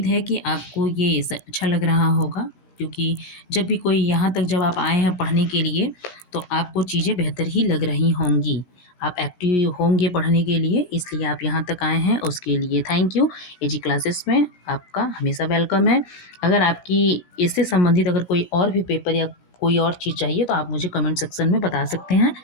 है कि आपको ये अच्छा लग रहा होगा, क्योंकि जब भी कोई यहाँ तक जब आप आए हैं पढ़ने के लिए, तो आपको चीज़ें बेहतर ही लग रही होंगी। आप एक्टिव होंगे पढ़ने के लिए, इसलिए आप यहाँ तक आए हैं, उसके लिए थैंक यू। एजी क्लासेस में आपका हमेशा वेलकम है। अगर आपकी इससे संबंधित अगर कोई और भी पेपर या कोई और चीज़ चाहिए तो आप मुझे कमेंट सेक्शन में बता सकते हैं।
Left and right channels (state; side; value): late; right; 17 ms